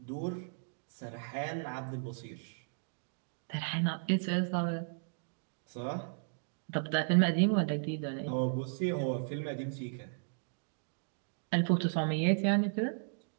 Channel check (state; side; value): silent; left; digital silence